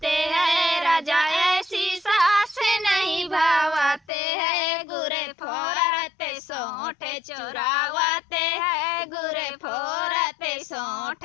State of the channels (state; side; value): drops out; right; at 4.0 s